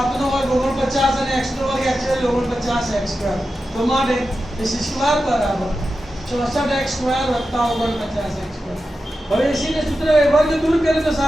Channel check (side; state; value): both; normal; correlation 0.91